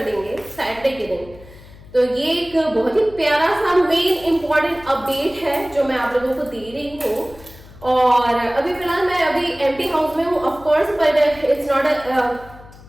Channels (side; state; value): left; noise; hum, 20 dB below the sound